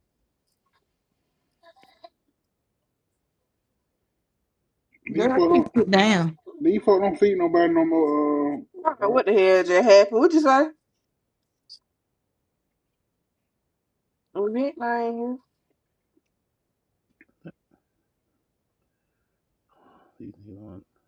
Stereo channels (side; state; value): both; identical; correlation 1.00